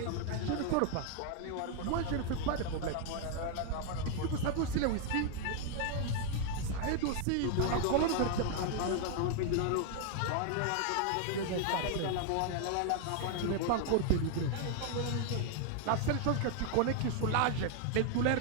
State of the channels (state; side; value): different; both; correlation 0.00